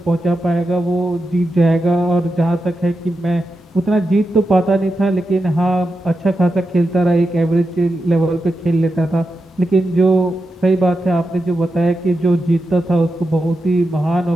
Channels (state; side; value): normal; both; correlation 0.88